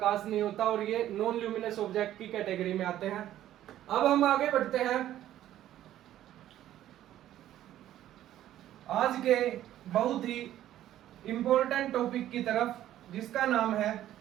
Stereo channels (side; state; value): left; quieter; 12.6 dB